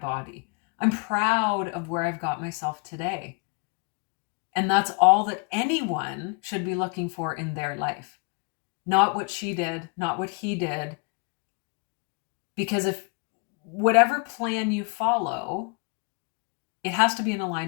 I'm proud of where I've got myself today. And that's all that anyone should be looking for in their life. Not what she did, not what he did. Because if whatever plan you follow, it has to be in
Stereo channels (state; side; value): quieter; right; 33.8 dB